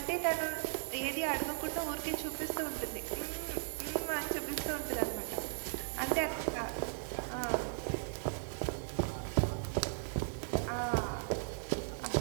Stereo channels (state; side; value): silent; left; digital silence